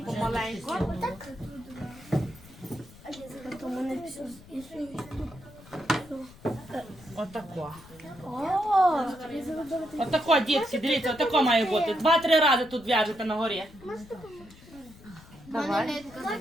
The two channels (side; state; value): left; noise; rumble, 21 dB below the sound